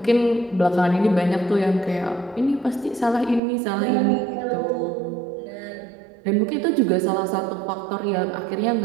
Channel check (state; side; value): drops out; left; at 3.4 s